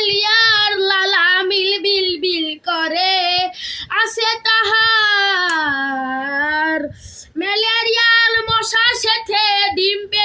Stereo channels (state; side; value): identical; both; correlation 1.00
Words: লালা মিল বিল বিল করে, আসে তাহার ম্যালেরিয়ার মশার সাথে ডিম